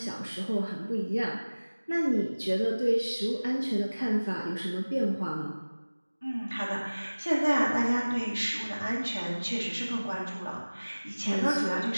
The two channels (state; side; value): inverted; both; correlation -1.00